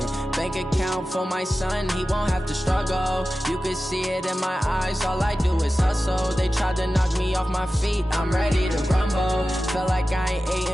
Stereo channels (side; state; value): both; normal; correlation 0.94